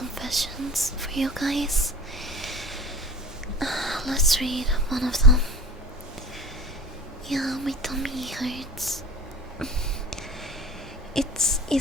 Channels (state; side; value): normal; both; correlation 0.39